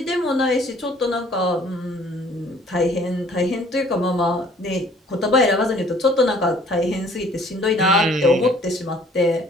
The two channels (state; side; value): normal; both; correlation 0.56